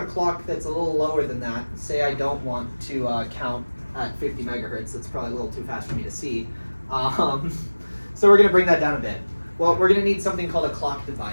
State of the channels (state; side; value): inverted; both; correlation -1.00